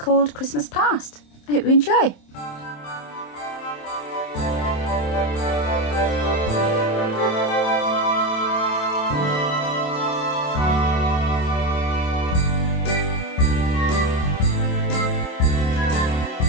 Christmas Past. I hope you enjoy.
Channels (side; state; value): right; late; 27 ms